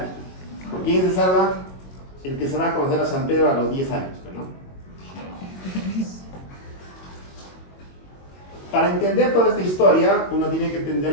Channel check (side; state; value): right; late; 22 ms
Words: ¿Quién se salva? El que se va a conocer a San Pedro a los 10 años, ¿no? Para entender toda esta historia, uno tiene que entender